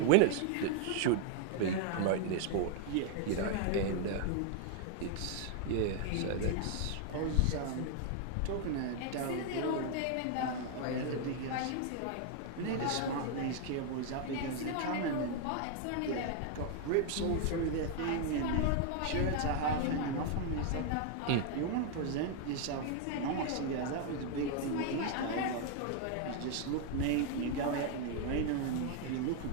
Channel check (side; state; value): both; different; correlation 0.00